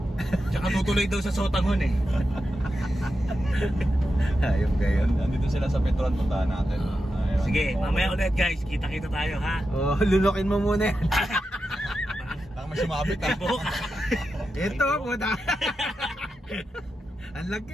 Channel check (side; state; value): both; normal; correlation 0.89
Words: Tsaka tutuloy daw sa Sotanghon eh. Ayun kayo. Nandito sila sa Petron, puntahan natin. Ayun. Sige, mamaya ulit guys, kita-kita tayo ha. Oh, lulokin mo muna yan. Baka may sumabit ha. Ito, puta. Ang